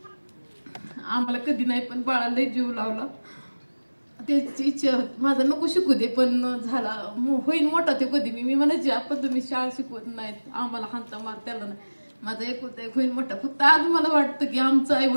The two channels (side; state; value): both; inverted; correlation -1.00